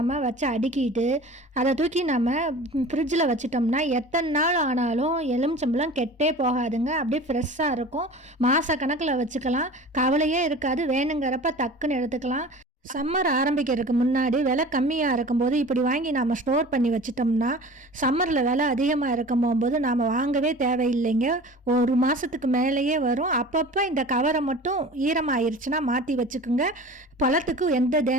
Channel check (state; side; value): normal; both; correlation 0.39